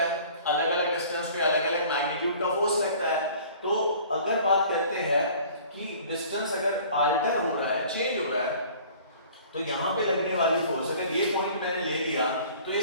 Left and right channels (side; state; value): both; inverted; correlation -0.49